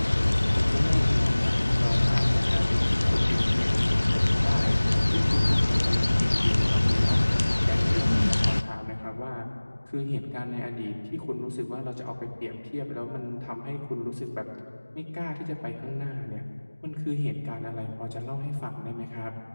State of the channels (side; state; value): both; inverted; correlation -1.00